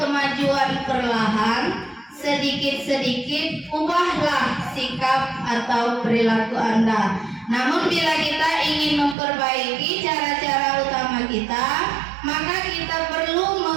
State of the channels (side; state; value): left; drops out; at 9.2 s